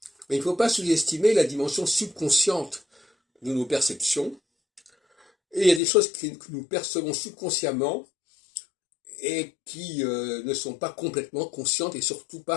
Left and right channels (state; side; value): drops out; right; at 5.8 s